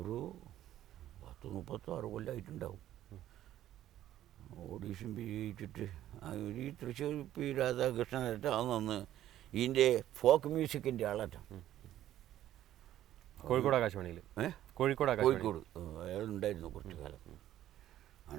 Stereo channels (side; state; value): left; quieter; 12.7 dB